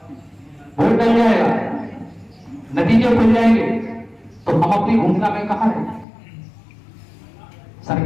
वोट डल जाएगा, नतीजे खुल जाएंगे, तो हम अपनी भूमिका में कहां हैं?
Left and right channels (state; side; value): drops out; right; at 6.1 s